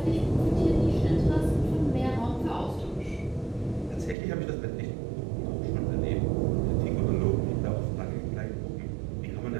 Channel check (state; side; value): drops out; left; at 4.2 s